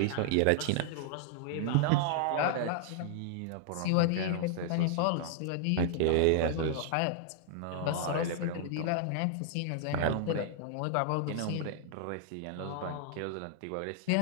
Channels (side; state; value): both; different; correlation -0.01